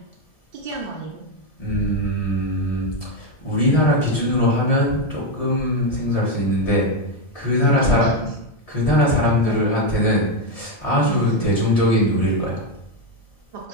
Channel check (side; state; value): right; late; 1.7 ms